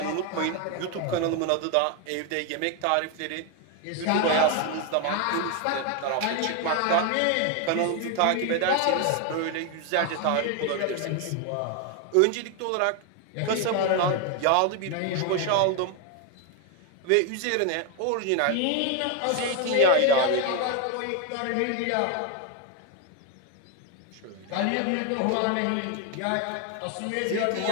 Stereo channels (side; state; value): both; different; correlation 0.01